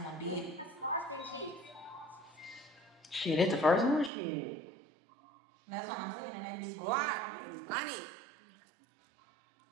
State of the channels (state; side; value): drops out; left; at 4.1 s